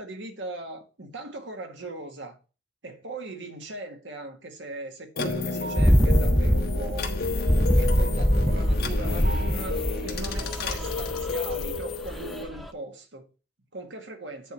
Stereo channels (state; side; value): normal; both; correlation 0.81